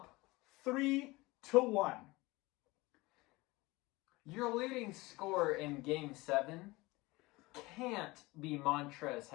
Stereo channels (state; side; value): quieter; right; 21.8 dB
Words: 3-1. Your leading scorer in Game 7 can't be Montrezl